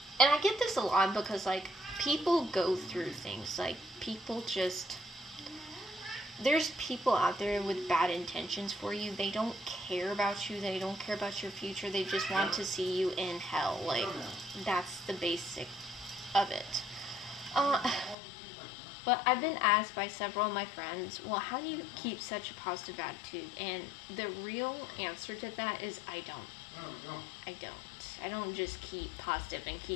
I get this a lot because, like, people go through things. Like, people just. There's people out there with bad intentions for you. They don't care about you. They don't care about your future. They just want to see you in hell. Like, that's the basic of it. Uh, but I've been asked by several of my friends, well, how do you keep such a positive attitude? And the real answer to that is I don't. I don't just keep positive and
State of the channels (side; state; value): right; drops out; at 18.2 s